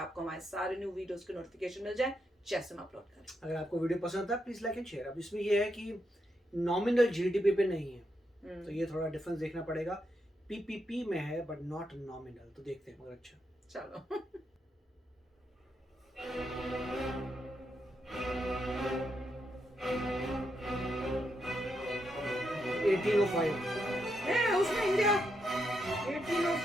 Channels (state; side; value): normal; both; correlation 0.82